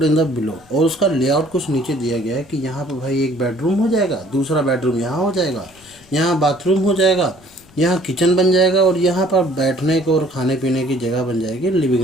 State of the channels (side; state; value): left; noise; rumble, 27 dB below the sound